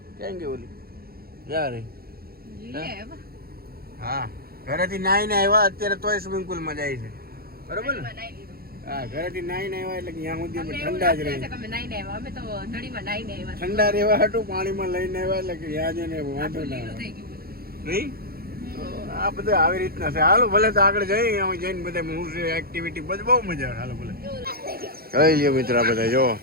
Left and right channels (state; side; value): late; left; 0.44 ms